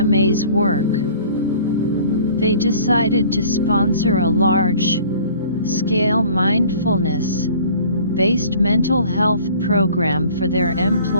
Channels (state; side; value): inverted; both; correlation -0.49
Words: work. They decided to sponsor a large-scale mindfulness-based mental health program for their